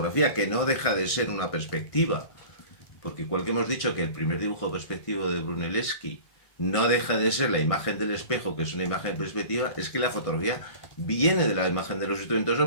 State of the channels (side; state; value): right; late; 1.6 ms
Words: que no deja de ser una perspectiva, porque igual que hemos dicho que el primer dibujo perspectivo de Brunelleschi no deja de ser la imagen del espejo, que es una imagen perspectiva, es que la fotografía viene de la imagen de los instrumentos